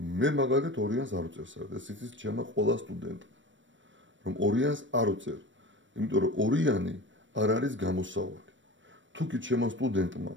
მაგალითად ორიანს არ უწევს, ეს იცის ჩემმა ყველა სტუდენტმა, რომ ორიანს არ უწევ, იმიტომ რომ ორიანი არ არის გამოსავალი. თუ კი ჩემმა სტუდენტმა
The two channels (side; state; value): left; late; 0.55 ms